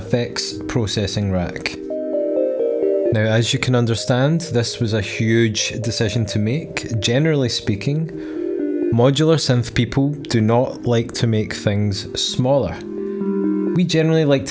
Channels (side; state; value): both; identical; correlation 1.00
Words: processing rack. Now, as you can understand, this was a huge decision to make. Generally speaking, modular synth people do not like to make things smaller. We generally like